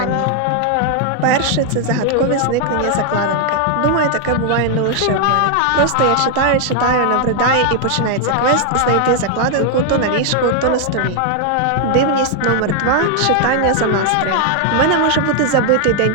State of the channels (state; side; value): different; both; correlation 0.00